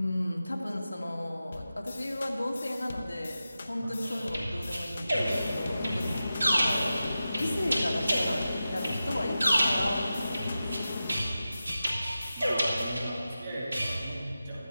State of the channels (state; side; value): inverted; both; correlation -0.93